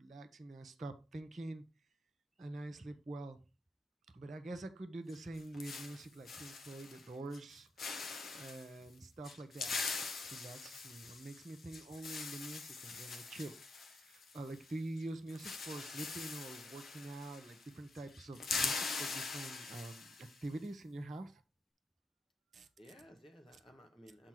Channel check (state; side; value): normal; both; correlation 0.81